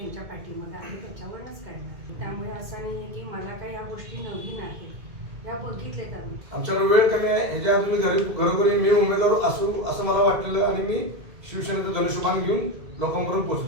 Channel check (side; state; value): left; late; 2.1 ms